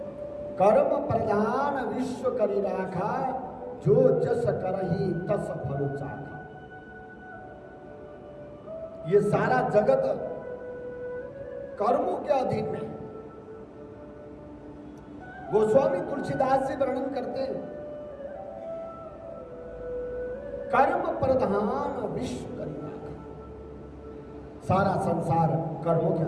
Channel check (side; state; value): both; identical; correlation 1.00